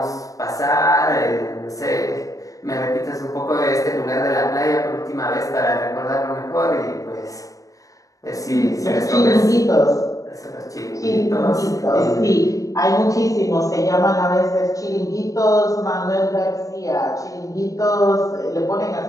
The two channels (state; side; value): late; right; 0.16 ms